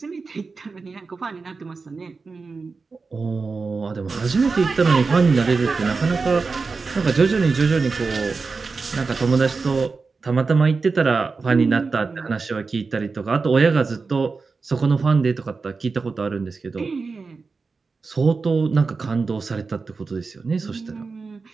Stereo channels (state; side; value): quieter; left; 4.4 dB